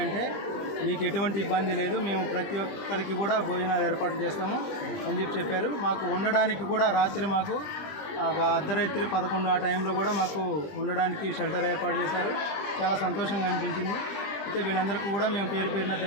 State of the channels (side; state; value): right; late; 20 ms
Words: మీకు ఎటువంటి ఇబ్బంది లేదు, మేము ప్రతి ఒక్కరికి కూడా భోజనాలు ఏర్పాటు చేస్తాము అని చెప్పారు. మాకు ఉండడానికి కూడా రాత్రి మాకు ఒక అర్ధరాత్రి 11 ఆ టైంలో కూడా మాకు ఉండడానికి షెల్టర్ ఏర్పాటు చేశారు. చాలా సంతోషంగా అనిపించింది. అయితే వీళ్ళందరికీ కూడా మేము పేరు పేరున